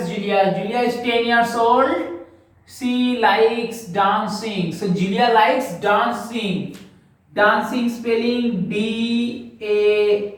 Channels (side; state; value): both; identical; correlation 1.00